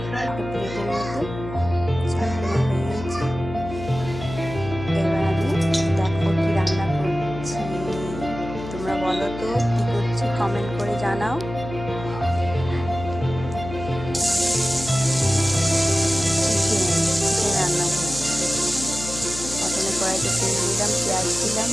একটা প্লেটের মধ্যে শাকটা হয়ে গেছে। এবার আমি দেখো কি রান্না করছি, তোমরা বলো তো কি করছি, কমেন্ট করে জানাও। চিকেন রান্না করছি। প্রথমে কড়াইতে তেল দিলাম, পেঁয়াজ দিলাম,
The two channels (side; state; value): left; noise; hum, 10 dB below the sound